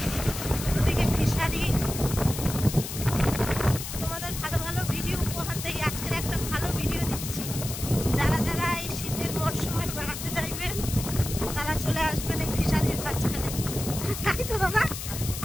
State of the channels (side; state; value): left; noise; hiss, 7 dB below the sound